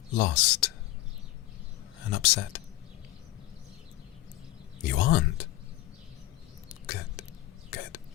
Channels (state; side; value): quieter; right; 16.4 dB